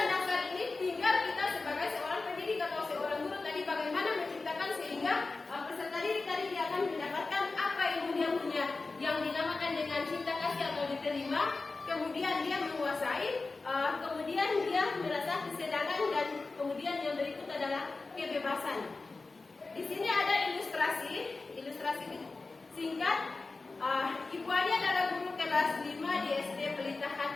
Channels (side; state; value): right; quieter; 3.7 dB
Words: dasar ini, tinggal kita sebagai seorang pendidik atau seorang guru tadi bagaimana menciptakan sehingga peserta didik tadi dia akan mendapatkan apa ilmu yang punya, yang dinamakan dengan cinta kasih atau diterima, kemudian dia menguasai, kemudian dia merasa kesenangan, dan kemudian yang berikut adalah kebebasan. Di sini ada ilustrasi singkat. Ibu Ani adalah guru kelas 5 di SD Pelita